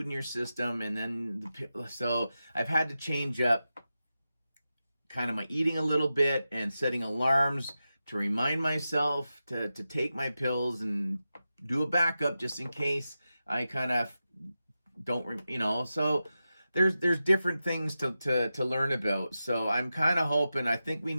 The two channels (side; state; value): both; inverted; correlation -0.92